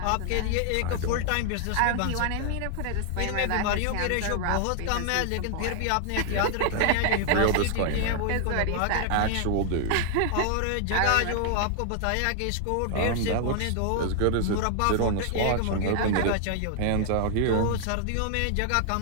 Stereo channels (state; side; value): different; both; correlation 0.00